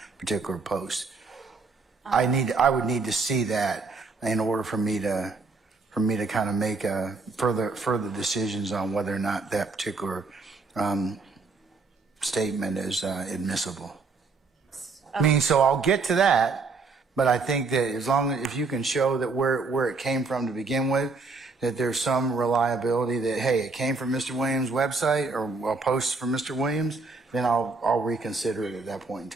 particular post. I would need to see that in order for me to kind of make further decisions on whether or not that particular statement is admissible. So I'll get to that, but I think that if you can show that where it came from to begin with, that there's some reliability that, hey, it came from Mr. Williams' website or a post from Mr. Williams, then I'll reconsider it at that point in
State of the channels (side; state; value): left; quieter; 4.1 dB